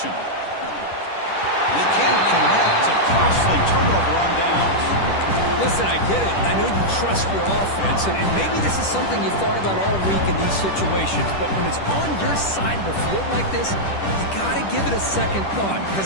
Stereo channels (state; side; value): late; right; 10 ms